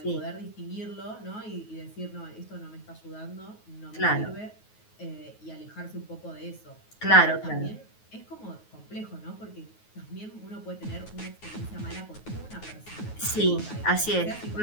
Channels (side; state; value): right; late; 9.4 ms